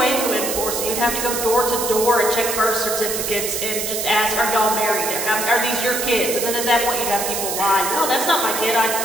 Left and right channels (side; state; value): right; noise; hiss, 2 dB below the sound